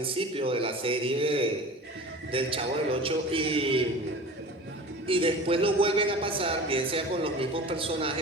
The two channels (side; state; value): both; normal; correlation 0.37